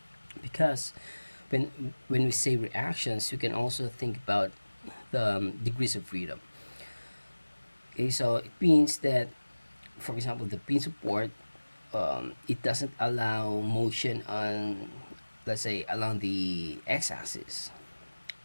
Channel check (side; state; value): both; inverted; correlation -1.00